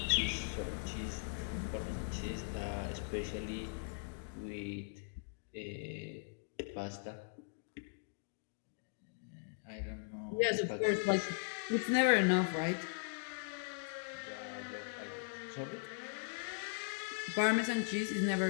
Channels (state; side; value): silent; right; digital silence